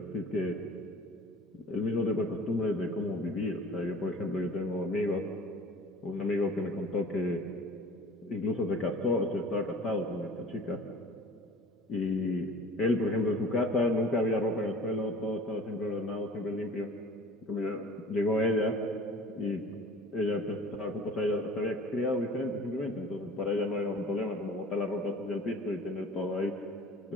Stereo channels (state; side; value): normal; both; correlation 0.44